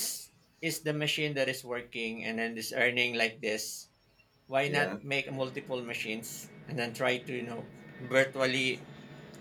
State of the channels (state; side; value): identical; both; correlation 1.00